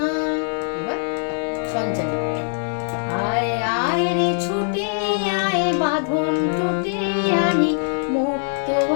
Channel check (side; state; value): right; silent; 64 dB below the other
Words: এবার সঞ্চারী। আয় আয় রে ছুটে আয় বাঁধন টুটে আনি মুক্ত